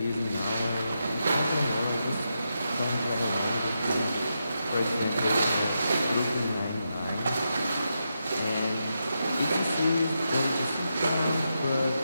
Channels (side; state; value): both; inverted; correlation -0.85